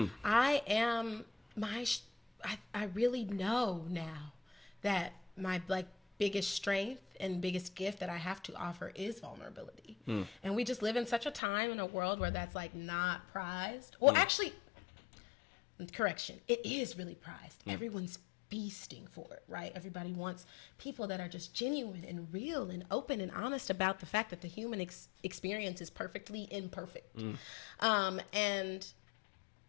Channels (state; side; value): drops out; right; at 11.4 s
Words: I am I really know now that my biggest strength and biggest gift that I have to offer is vulnerability. And we just live in such a time in a world where that's not prized. Well, actually, correction, it is really prized. Everyone's feasting for it, right? Everybody wants people that are just genuine and real and open and honest about the fact that the human experience is perfectly imperfect. And